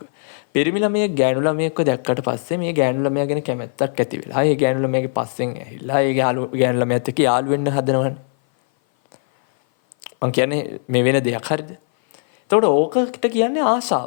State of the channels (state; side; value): silent; right; 58 dB below the other